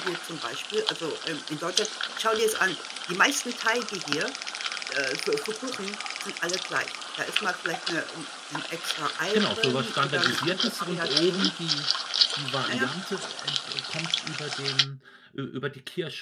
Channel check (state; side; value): identical; both; correlation 1.00